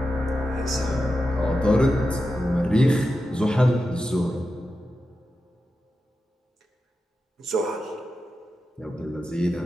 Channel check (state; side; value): normal; both; correlation 0.90